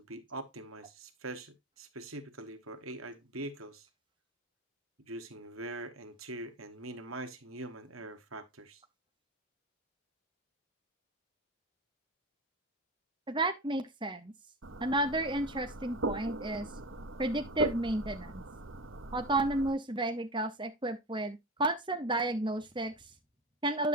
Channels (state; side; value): normal; both; correlation 0.24